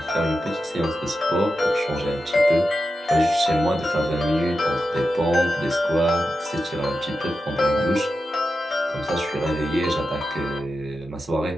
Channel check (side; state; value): both; normal; correlation 0.90